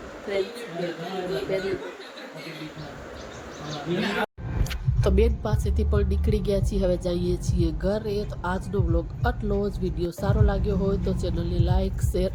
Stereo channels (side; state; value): both; identical; correlation 1.00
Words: તો બેન પાસેથી પણ નીકળી ગયા છીએ. હવે જઈએ છીએ ઘરે. તો આજનો વ્લોગ આટલો જ. વિડીયો સારો લાગ્યો હોય તો ચેનલને લાઈક, શેર